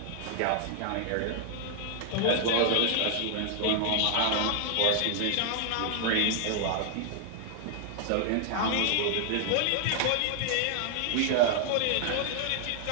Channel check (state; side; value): different; both; correlation 0.00